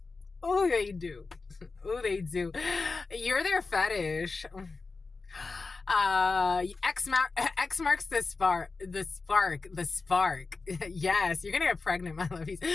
Oh, they do. Oh, they do. You're their fetish. X marks the spark. Yes, you're gonna get pregnant, my lovies,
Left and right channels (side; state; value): right; quieter; 4.1 dB